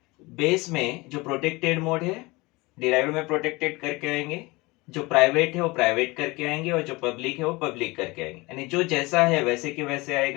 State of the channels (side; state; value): right; quieter; 23.3 dB